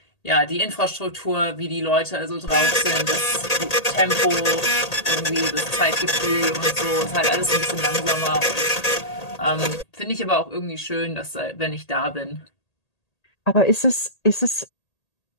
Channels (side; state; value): right; late; 1.8 ms